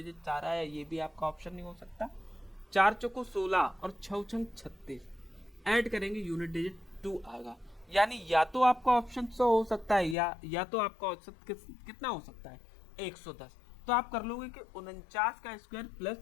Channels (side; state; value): right; drops out; at 10.2 s